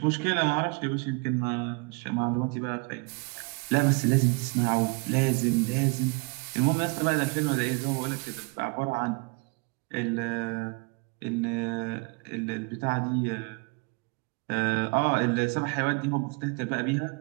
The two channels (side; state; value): left; quieter; 29.7 dB